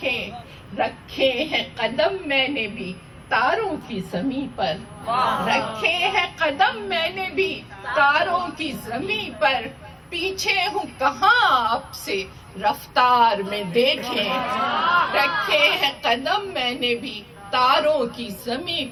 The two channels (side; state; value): both; identical; correlation 1.00